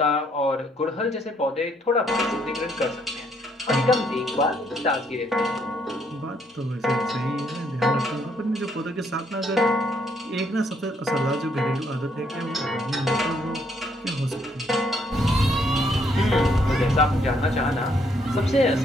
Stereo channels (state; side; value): normal; both; correlation 0.70